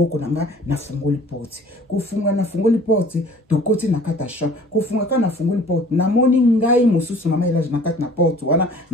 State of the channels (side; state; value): both; normal; correlation 0.50